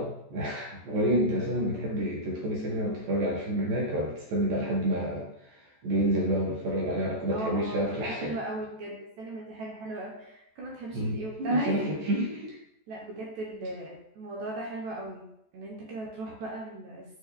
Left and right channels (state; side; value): late; left; 14 ms